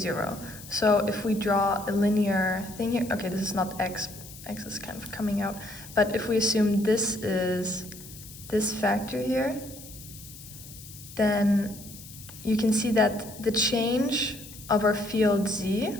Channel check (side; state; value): left; noise; hiss, 16 dB below the sound